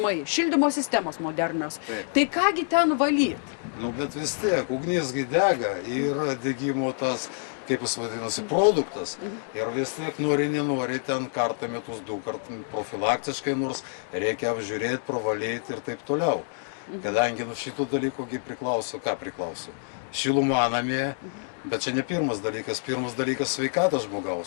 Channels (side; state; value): right; silent; 60 dB below the other